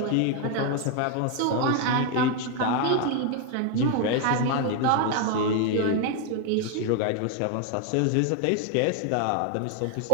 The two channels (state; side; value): different; both; correlation 0.01